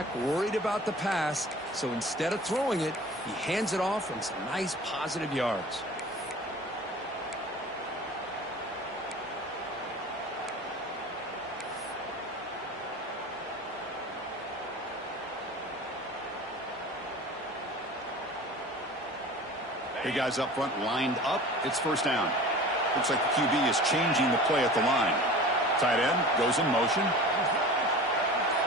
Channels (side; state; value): both; normal; correlation 0.39